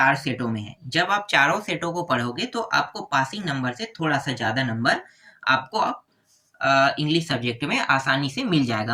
सेटों में है। जब आप चारों सेटों को पढ़ोगे तो आपको पासिंग नंबर से थोड़ा सा ज़्यादा नंबर आपको इंग्लिश सब्जेक्ट में आसानी से मिल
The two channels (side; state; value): both; identical; correlation 1.00